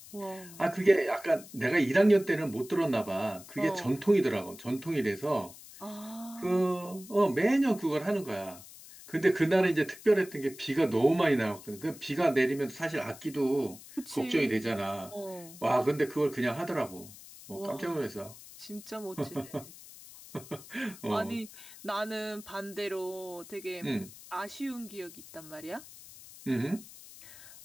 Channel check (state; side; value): noise; left; hiss, 18 dB below the sound